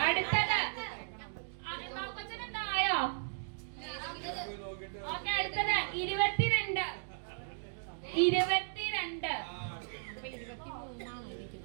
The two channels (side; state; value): left; silent; digital silence